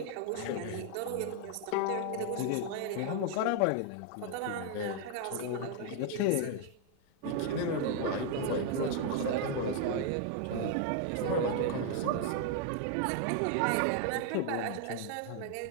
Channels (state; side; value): different; both; correlation 0.00